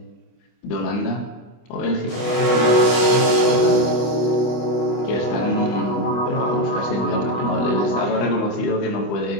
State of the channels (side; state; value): right; late; 25 ms